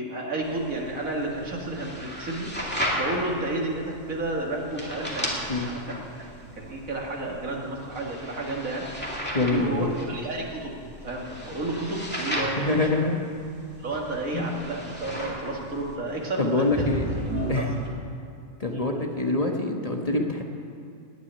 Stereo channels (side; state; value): both; normal; correlation -0.09